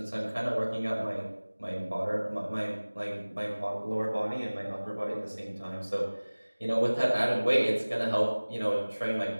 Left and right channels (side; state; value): both; inverted; correlation -1.00